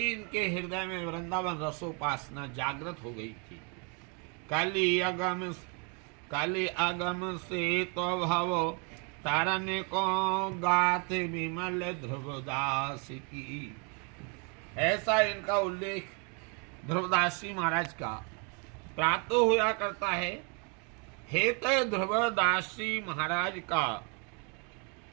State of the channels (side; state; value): left; quieter; 35.5 dB